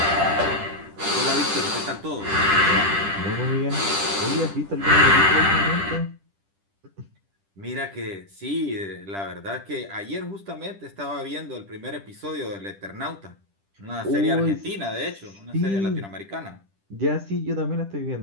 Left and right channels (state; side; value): late; left; 10 ms